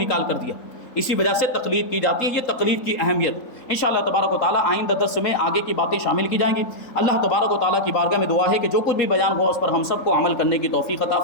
کر دیا. اسی وجہ سے تقلید کی جاتی ہے. یہ تقلید کی اہمیت انشاءاللہ تبارک و تعالیٰ آئندہ درس میں آگے کی باتیں شامل کی جائیں گی. اللہ تبارک و تعالیٰ کی بارگاہ میں دعا ہے کہ جو کچھ بھی بیان ہوا اس پر ہم سب کو عمل کرنے کی توفیق عطا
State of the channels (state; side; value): late; right; 3.8 ms